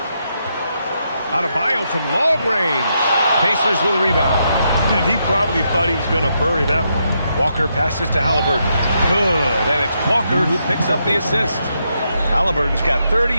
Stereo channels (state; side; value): inverted; both; correlation -0.80